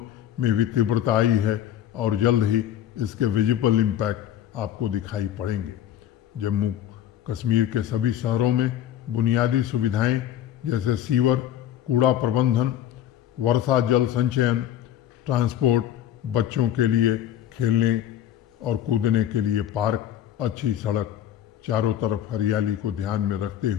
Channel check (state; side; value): quieter; right; 11.1 dB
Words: भी तीव्रता आई है और जल्द ही इसके विजिबल इम्पैक्ट आपको दिखाई पड़ेंगे। जम्मू कश्मीर के सभी शहरों में बुनियादी सुविधाएं जैसे सीवर, कूड़ा प्रबंधन, वर्षा जल संचयन, ट्रांसपोर्ट, बच्चों के लिए खेलने और कूदने के लिए पार्क, अच्छी सड़क, चारों तरफ हरियाली को ध्यान में रखते